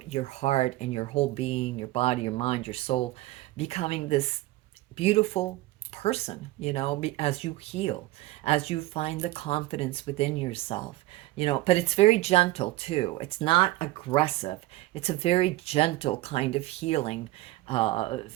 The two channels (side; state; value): left; quieter; 17.9 dB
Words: heart and your whole being, your body, your mind, your soul, becoming this beautiful person, as you heal, as you find the confidence within yourself, but it's very gentle too. It's not aggressive. It's a very gentle kind of healing